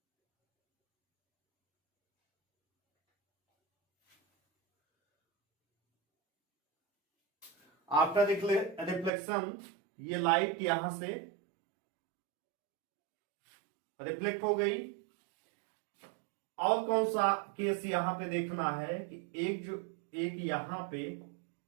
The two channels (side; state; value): left; drops out; at 9.1 s